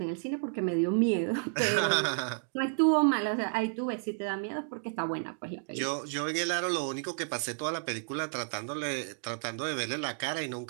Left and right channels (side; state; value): left; silent; digital silence